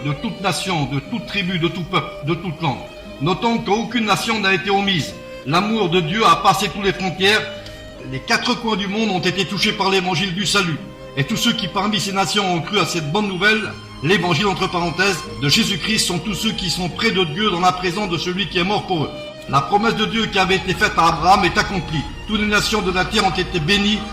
de toute nation, de toute tribu, de tout peuple, de toute langue. Notons qu'aucune nation n'a été omise. L'amour de Dieu a passé toutes les frontières. Les 4 coins du monde ont été touchés par l'évangile du salut. Et tous ceux qui parmi ces nations ont cru à cette bonne nouvelle, l'évangile entre parenthèses, de Jésus-Christ, sont tous ceux qui sont près de Dieu dans la présence de celui qui est mort pour eux. La promesse de Dieu qui avait été faite à Abraham est accomplie. Toutes les nations de la terre ont été bénies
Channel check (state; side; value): identical; both; correlation 1.00